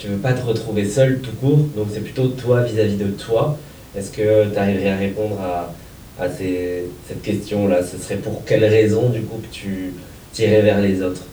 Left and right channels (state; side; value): identical; both; correlation 1.00